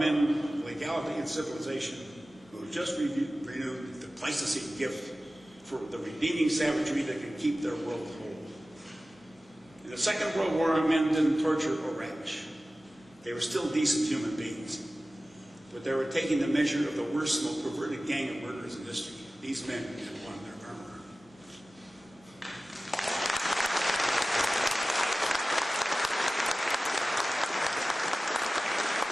of legality and civilization who have just renewed the Pleistocene gift for the redeeming savagery that can keep their world whole. In the Second World War, our men didn't torture or ravish. They were still decent human beings. But they were taking the measure of the worst, most perverted gang of murderers in history. These men had won their armor.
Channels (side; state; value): both; normal; correlation 0.96